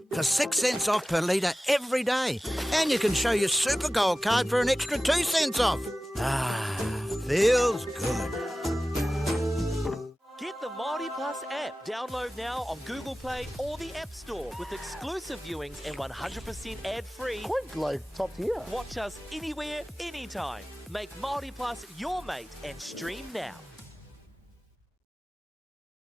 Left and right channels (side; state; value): both; normal; correlation 0.96